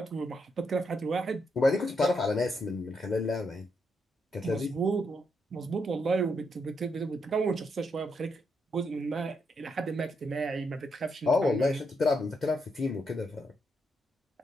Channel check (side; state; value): both; normal; correlation 0.79